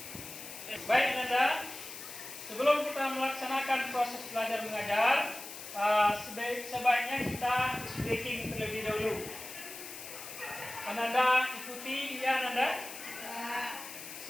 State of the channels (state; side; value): noise; left; hiss, 11 dB below the sound